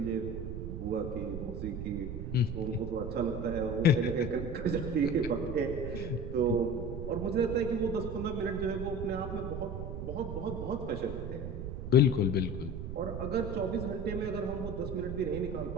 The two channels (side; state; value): right; noise; rumble, 5 dB below the sound